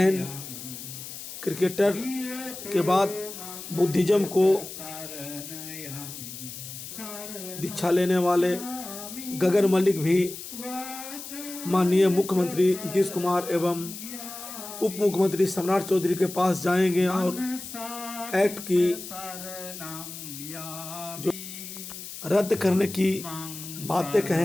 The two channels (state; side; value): noise; left; hiss, 11 dB below the sound